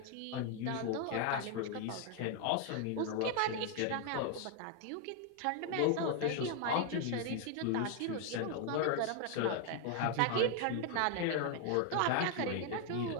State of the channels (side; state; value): both; different; correlation 0.00